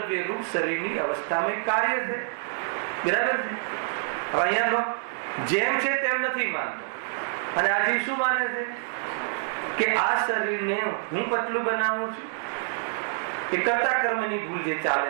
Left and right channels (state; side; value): silent; left; digital silence